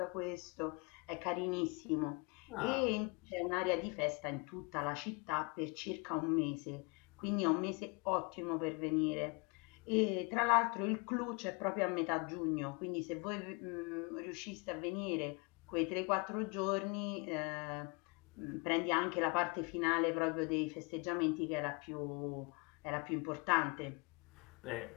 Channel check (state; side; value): quieter; right; 31.4 dB